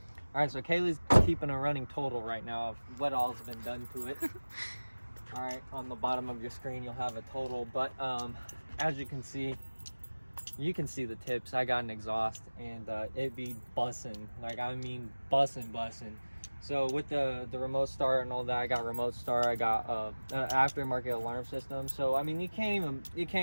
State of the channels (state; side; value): inverted; both; correlation -1.00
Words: right, so Kaylee's keeping a running total right now of what all's been done to it. All right, on the bottom of your screen you'll have a total, but as you can see the tips. I got an exhaust, and it be bussin', like, I mean bussin'. So with the remote start and all that, I got remote start. I got an aftermarket alarm system. So I mean, you can't